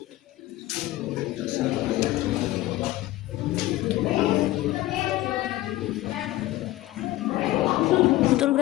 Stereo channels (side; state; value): right; quieter; 16.8 dB